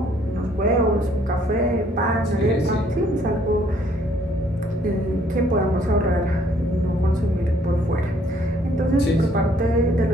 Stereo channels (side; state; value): both; normal; correlation 0.64